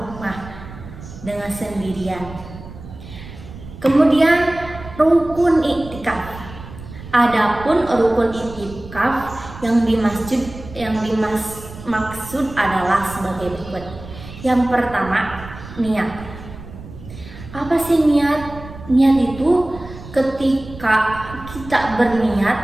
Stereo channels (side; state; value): right; noise; rumble, 15 dB below the sound